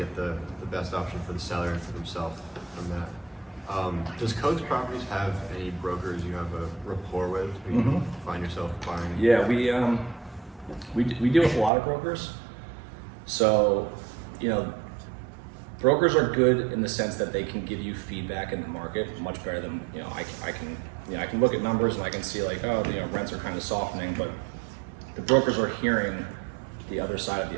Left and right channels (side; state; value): left; drops out; at 11.7 s